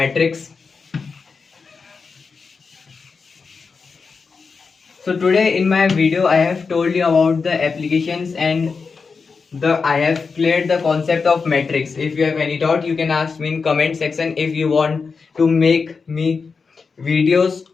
So today in my video I have told you about the applications and I have cleared the concept of matrix. If you have any doubt, you can ask me in comment section. If you want to make me videos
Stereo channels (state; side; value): quieter; right; 5.0 dB